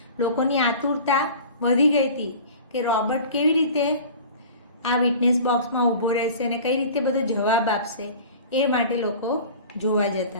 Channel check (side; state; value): both; inverted; correlation -0.41